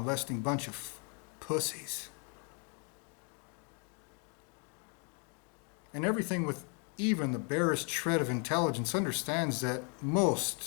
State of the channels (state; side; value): quieter; right; 37.7 dB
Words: bunch of pussies. And everything with even the barest shred of intelligence understands that